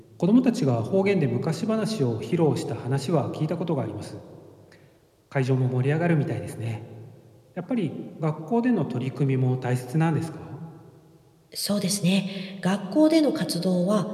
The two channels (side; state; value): both; identical; correlation 1.00